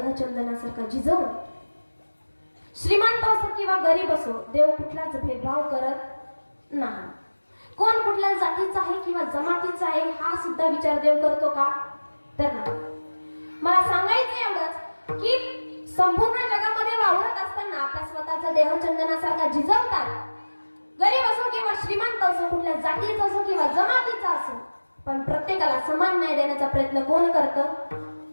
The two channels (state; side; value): inverted; both; correlation -1.00